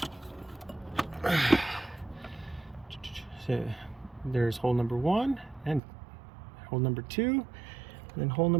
So there's hole number 1 and hole number 2, and then hole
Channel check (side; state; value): left; drops out; at 5.8 s